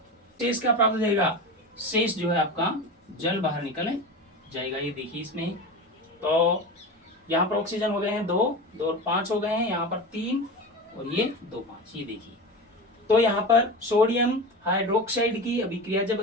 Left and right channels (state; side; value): normal; both; correlation 0.27